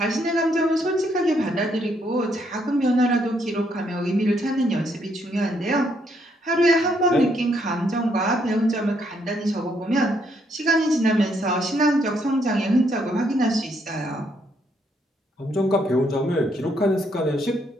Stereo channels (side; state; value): both; normal; correlation 0.73